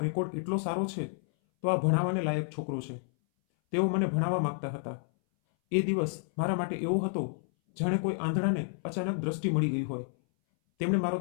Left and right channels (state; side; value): silent; right; 58 dB below the other